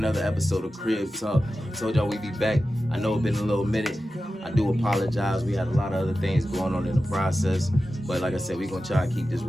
episode of Crib Talk. I told y'all we'd be back. I know it's been a little minute. I do apologize. We had a lot of other things going on in the process. But like I said, we're going to try to keep this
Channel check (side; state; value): both; normal; correlation 0.93